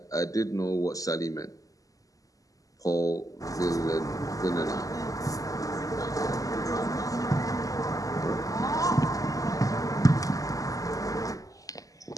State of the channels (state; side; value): late; right; 0.17 ms